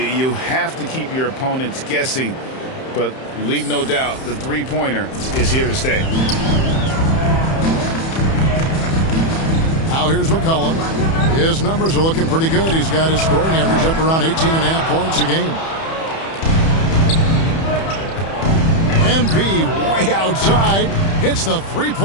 have to keep your opponents guessing. But leave no doubt, the three-pointer is here to stay. Now here's McCollum. His numbers are looking pretty good. He's got his scoring average up around 18.5 points a game. MP way outside. Hits the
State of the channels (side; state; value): right; late; 31 ms